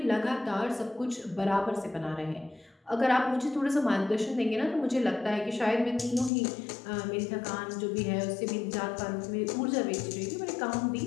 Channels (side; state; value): right; drops out; at 6.3 s